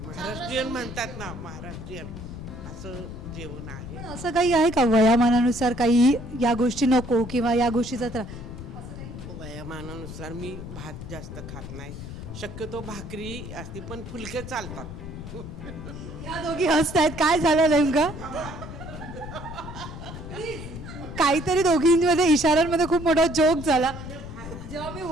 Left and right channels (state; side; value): noise; left; rumble, 10 dB below the sound